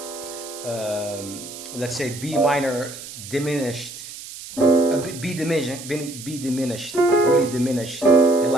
let's say B minor diminished, B diminished, really diminished, and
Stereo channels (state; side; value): noise; right; hiss, 13 dB below the sound